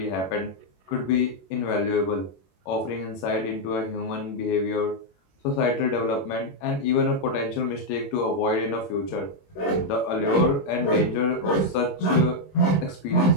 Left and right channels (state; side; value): late; right; 21 ms